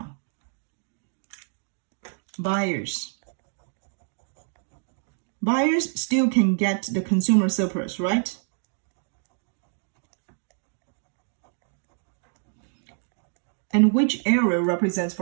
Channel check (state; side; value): silent; left; 58 dB below the other